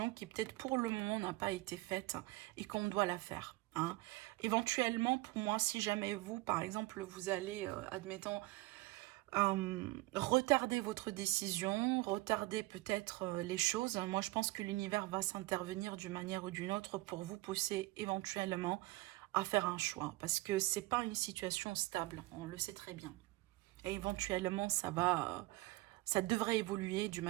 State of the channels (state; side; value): quieter; left; 20.2 dB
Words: qui peut-être pour le moment n'a pas été faite et qu'on doit la faire, hein. Éventuellement, pour moi, si jamais vous, par exemple, vous allez, admettons, retarder votre décision, retarder peut-être les choses, moi je pense que l'univers va s'intervenir d'une manière ou d'une autre pour vous pousser éventuellement à faire un choix. Parce que c'est pas une situation stable, on le sait très bien. Et éventuellement, ça va... ça devrait évoluer d'une